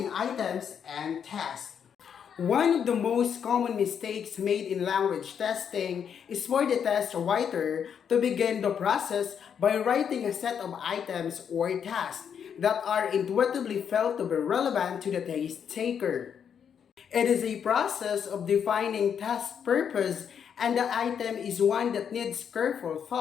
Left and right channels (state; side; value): quieter; right; 7.8 dB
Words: items and tasks. One of the most common mistakes made in language testing is for the test writer to begin the process by writing a set of items or tasks that are intuitively felt to be relevant to the test taker. It is a process of defining task purpose, and the item is one that needs careful